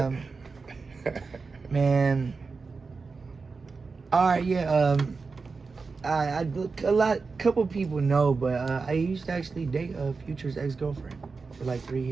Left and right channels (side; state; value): left; quieter; 4.5 dB